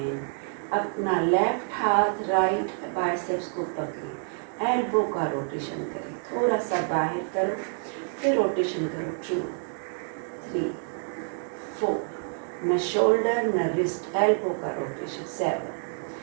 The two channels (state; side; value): silent; left; 56 dB below the other